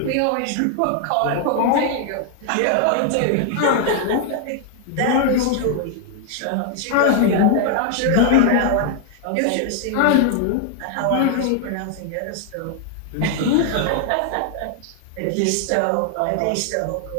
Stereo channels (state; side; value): different; both; correlation 0.00